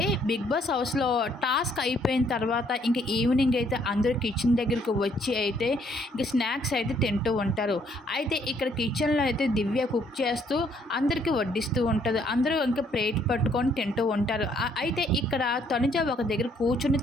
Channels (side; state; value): both; normal; correlation 0.66